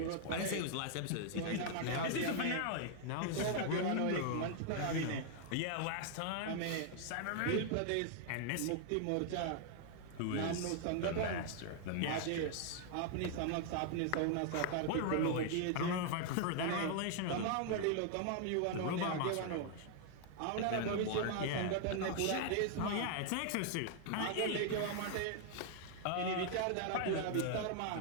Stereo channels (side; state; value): both; different; correlation 0.00